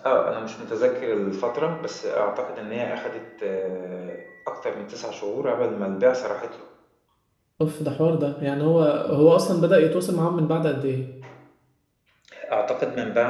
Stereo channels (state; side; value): identical; both; correlation 1.00